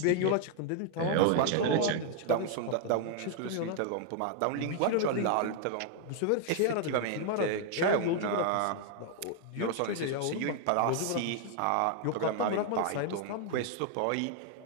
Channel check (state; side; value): different; both; correlation 0.00